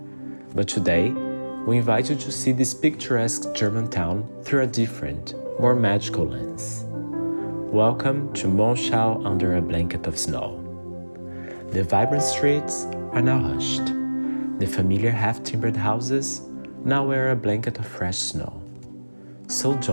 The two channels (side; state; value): both; inverted; correlation -1.00